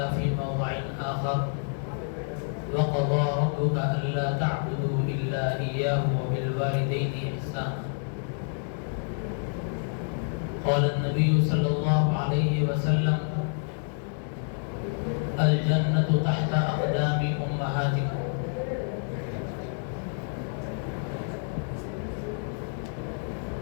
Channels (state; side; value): silent; right; 59 dB below the other